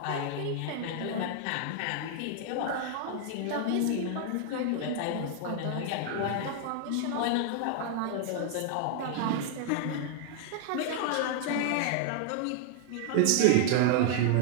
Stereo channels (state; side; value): different; both; correlation 0.00